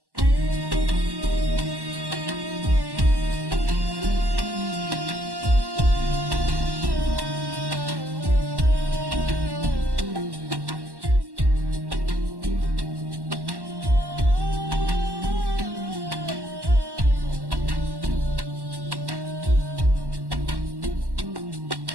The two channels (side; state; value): left; late; 1.1 ms